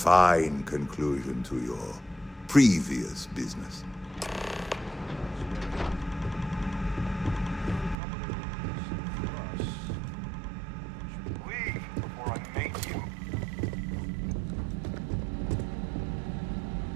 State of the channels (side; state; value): left; drops out; at 8.0 s